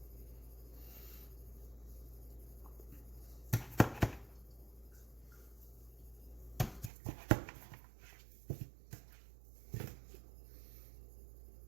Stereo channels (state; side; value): drops out; left; at 6.9 s